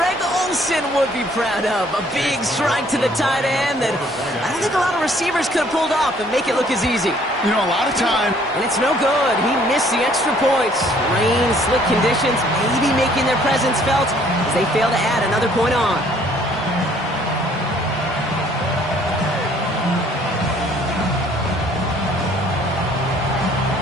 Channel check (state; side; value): normal; both; correlation 0.60